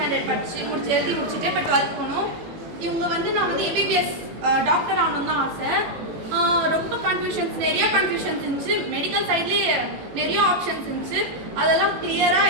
எழுதி முடிச்சுட்டு இப்போ 12th போகணும். இவங்க வந்து நான் வந்து எம்பிபிஎஸ் டாக்டர் ஆகணும்னு தான் ஆசை. ரொம்ப நிறைய கன்ஃபியூஷன்ஸ் இருந்துச்சு. மெடிக்கல் சைட்லேயே நிறைய ஆப்ஷன்ஸ் இருந்துச்சு. அதெல்லாம்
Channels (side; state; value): left; late; 18 ms